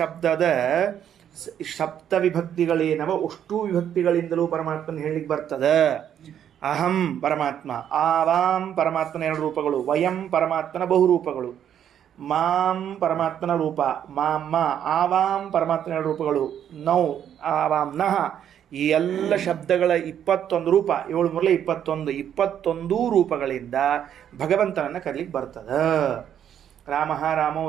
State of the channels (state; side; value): quieter; left; 9.6 dB